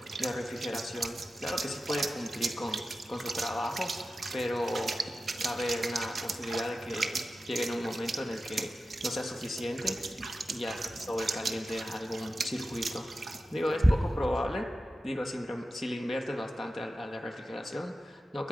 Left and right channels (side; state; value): both; normal; correlation 0.93